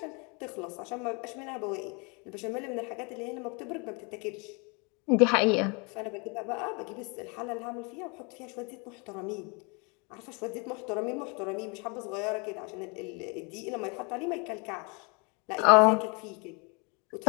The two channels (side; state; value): right; quieter; 31.7 dB